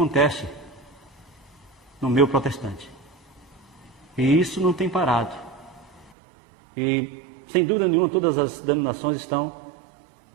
no meio protestante. E isso não tem parado. E, sem dúvida nenhuma, todas as denominações estão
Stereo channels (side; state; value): left; drops out; at 6.1 s